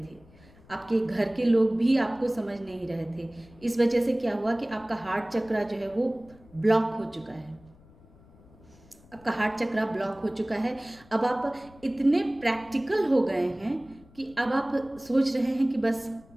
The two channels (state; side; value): noise; left; rumble, 25 dB below the sound